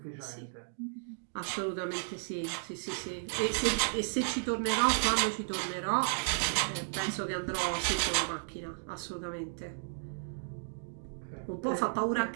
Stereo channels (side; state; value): left; silent; digital silence